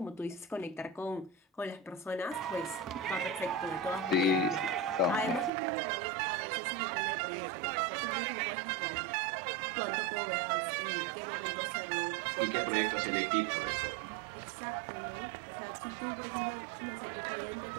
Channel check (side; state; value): left; drops out; at 5.5 s